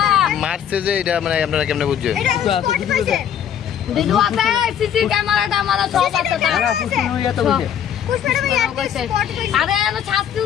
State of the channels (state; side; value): quieter; right; 9.2 dB